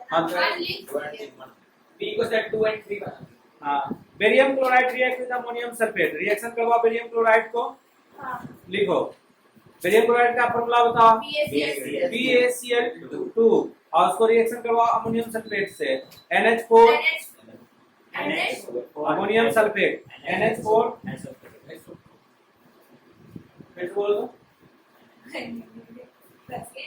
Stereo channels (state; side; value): identical; both; correlation 1.00